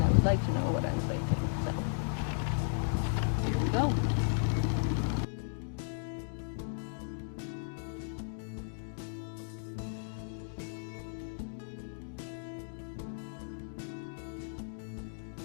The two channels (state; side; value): silent; right; digital silence